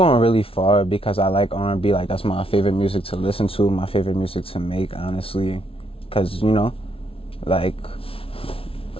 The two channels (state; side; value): late; right; 0.26 ms